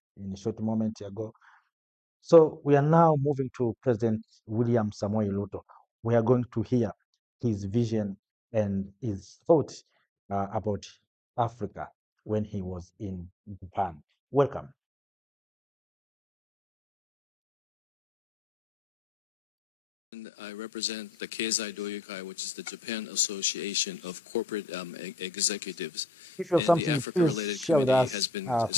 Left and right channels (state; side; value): normal; both; correlation 0.83